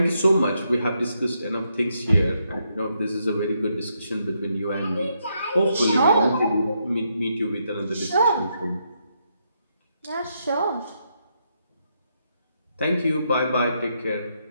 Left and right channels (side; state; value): both; inverted; correlation -0.79